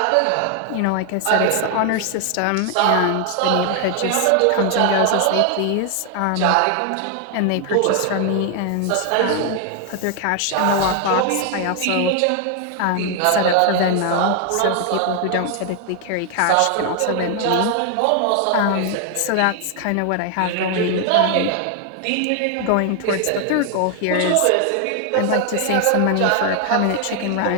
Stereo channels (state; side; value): different; both; correlation 0.00